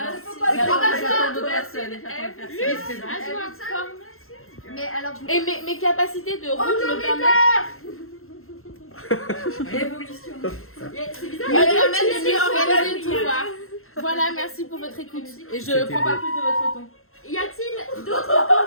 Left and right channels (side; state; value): right; late; 0.62 ms